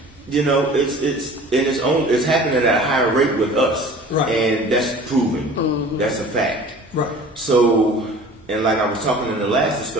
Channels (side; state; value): both; normal; correlation 0.44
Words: It's happening at a higher rate with us. Right. And that's proven. That's a fact. Right. So, and like I was talking in the last